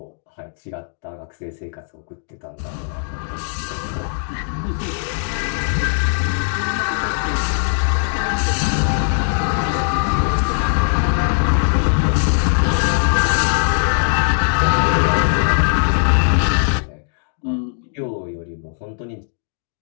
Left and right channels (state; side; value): silent; right; digital silence